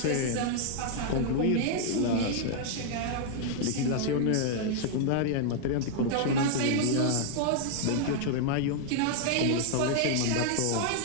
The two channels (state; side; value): different; both; correlation 0.00